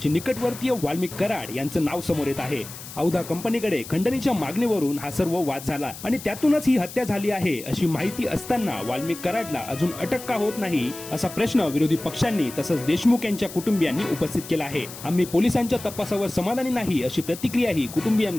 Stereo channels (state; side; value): noise; left; hiss, 13 dB below the sound